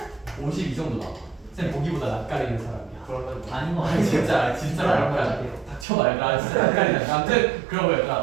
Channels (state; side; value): drops out; left; at 5.9 s